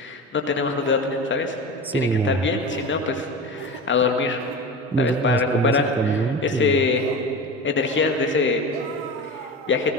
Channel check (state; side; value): normal; both; correlation 0.29